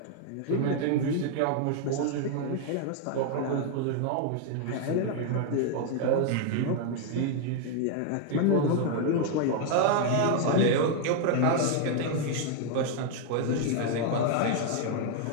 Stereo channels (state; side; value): different; both; correlation 0.00